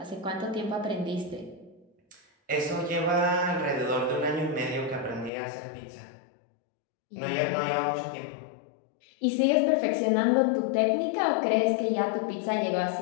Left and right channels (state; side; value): drops out; right; at 5.3 s